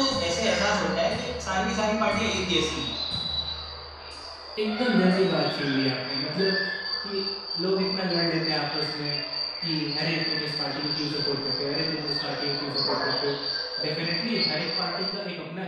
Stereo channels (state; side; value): identical; both; correlation 1.00